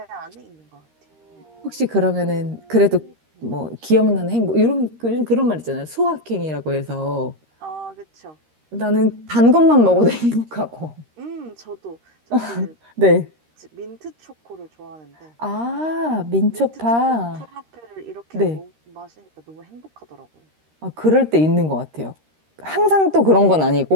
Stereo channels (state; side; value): late; left; 13 ms